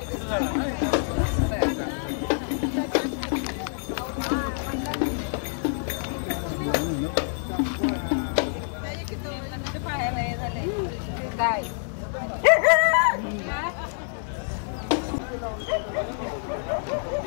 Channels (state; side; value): silent; right; 56 dB below the other